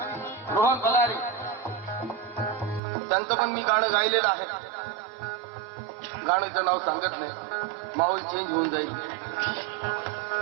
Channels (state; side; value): drops out; left; at 2.8 s